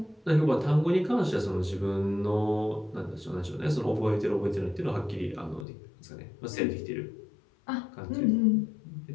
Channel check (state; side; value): drops out; right; at 5.7 s